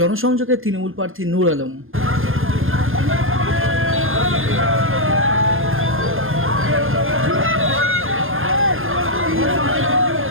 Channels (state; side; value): late; left; 0.60 ms